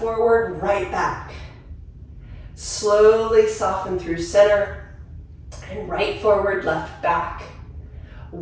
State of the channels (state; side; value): identical; both; correlation 1.00